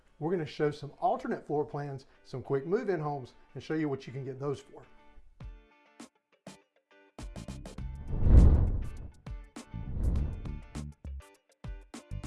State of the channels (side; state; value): both; identical; correlation 1.00